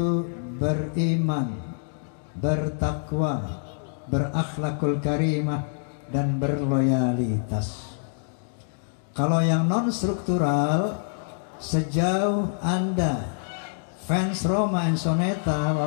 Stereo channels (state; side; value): silent; right; digital silence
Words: beriman, bertakwa, berakhlakul karimah, dan berloyalitas. Kalau yang non struktural, sejauh Anda fans Rhoma and Soneta